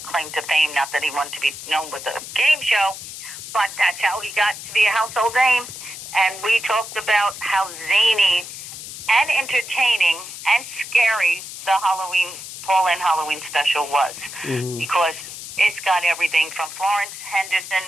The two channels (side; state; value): left; noise; hiss, 11 dB below the sound